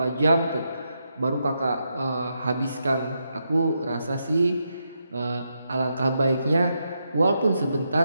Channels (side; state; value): both; inverted; correlation -0.83